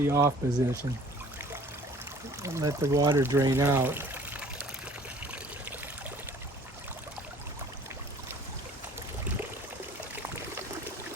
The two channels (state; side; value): normal; both; correlation 0.51